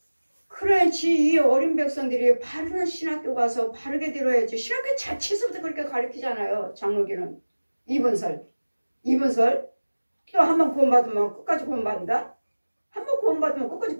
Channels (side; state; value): both; inverted; correlation -1.00